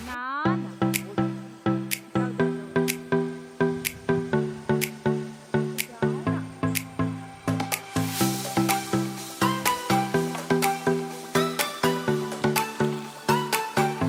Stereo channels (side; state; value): both; identical; correlation 1.00